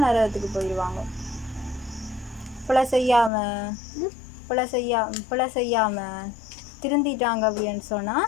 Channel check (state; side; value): drops out; right; at 3.3 s